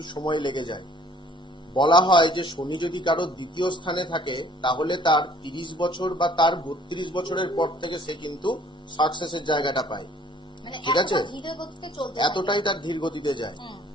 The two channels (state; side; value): normal; both; correlation 0.56